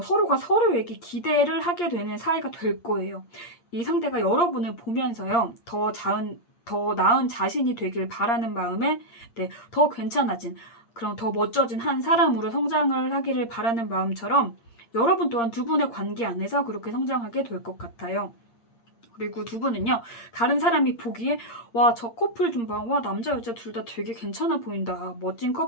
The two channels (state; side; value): late; right; 8.7 ms